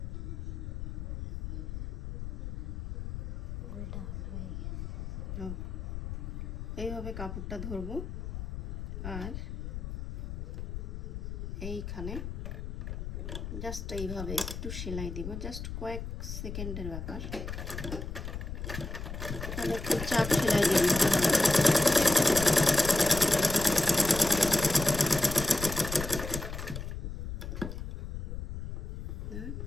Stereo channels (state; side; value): noise; left; rumble, 6 dB below the sound